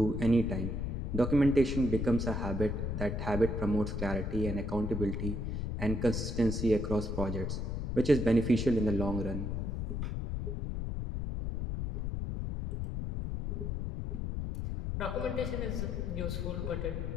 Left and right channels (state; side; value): noise; left; rumble, 2 dB below the sound